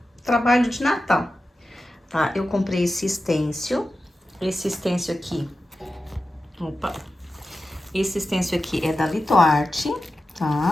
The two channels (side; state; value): both; normal; correlation 0.92